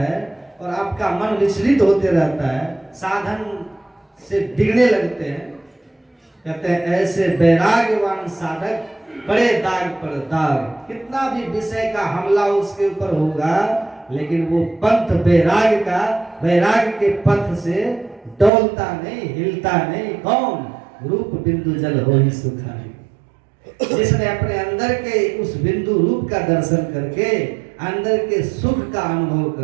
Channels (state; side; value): drops out; left; at 18.5 s